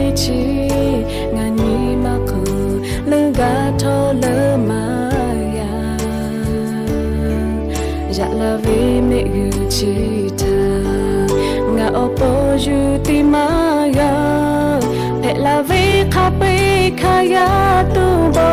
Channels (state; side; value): identical; both; correlation 1.00